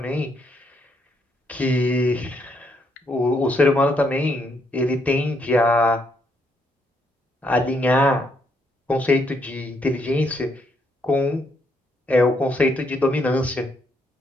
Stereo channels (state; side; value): normal; both; correlation 0.74